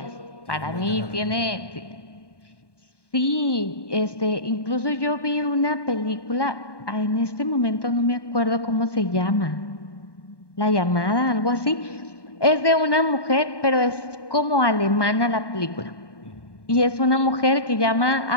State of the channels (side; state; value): right; late; 1.2 ms